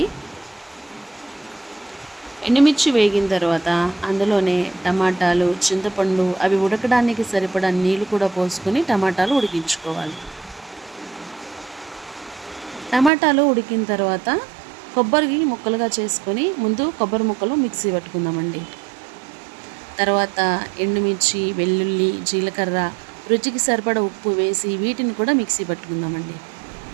ఎండుమిర్చి వేగిన తర్వాత అందులోనే టమాటాలు, చింతపండు అవి ఉడకడానికి సరిపడా నీళ్లు కూడా పోసుకొని టమాటాలు ఉడికించుకోవాలి. టమాటాలు ఉడికిన తర్వాత కొబ్బరి ముక్కలుగా చేసుకొని ముందు కొబ్బరి ముక్కలు మిక్సీ పట్టుకుందామండి. తర్వాత ఎండుమిర్చి, వెల్లుల్లి, జీలకర్ర, రుచికి సరిపడా ఉప్పు వేసి వీటిని కూడా మిక్సీ పట్టుకుందామండి.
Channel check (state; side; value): drops out; left; at 13.1 s